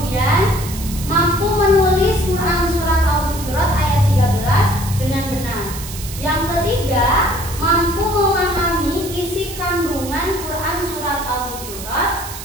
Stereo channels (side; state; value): right; noise; hiss, 11 dB below the sound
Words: mampu menulis Quran surat Al-Hujurat ayat 13 dengan benar. Yang ketiga, mampu memahami isi kandungan Quran surat Al-Hujurat